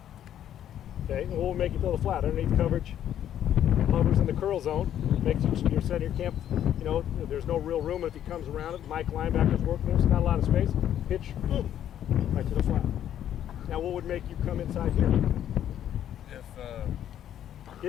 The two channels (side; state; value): right; quieter; 10.6 dB